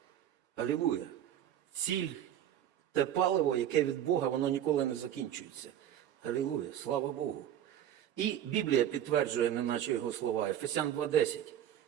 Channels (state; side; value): quieter; left; 10.8 dB